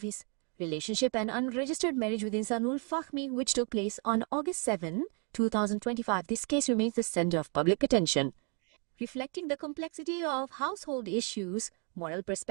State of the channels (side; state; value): left; quieter; 38.5 dB